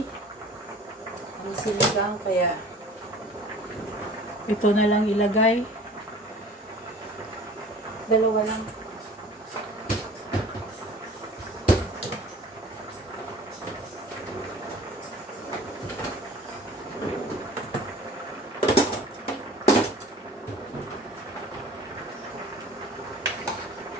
Ang siligang, kaya ito na lang ilagay. Dalawa lang.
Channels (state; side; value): normal; both; correlation 0.46